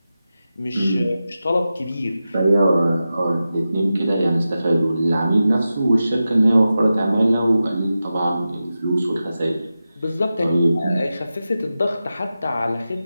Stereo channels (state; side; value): inverted; both; correlation -0.92